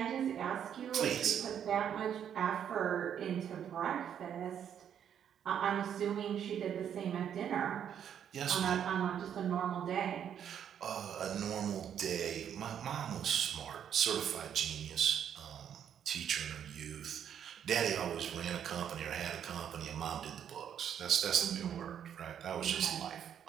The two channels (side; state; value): left; quieter; 9.0 dB